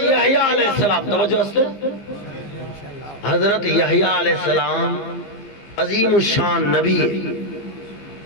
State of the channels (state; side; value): late; right; 14 ms